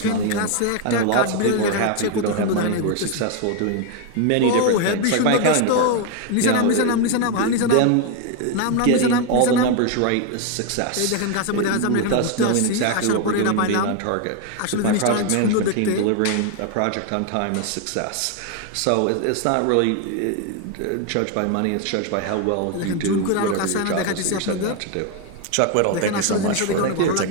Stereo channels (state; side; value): different; both; correlation 0.01